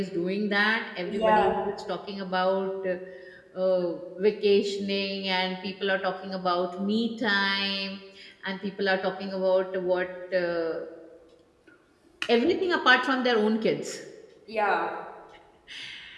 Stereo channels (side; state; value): both; identical; correlation 1.00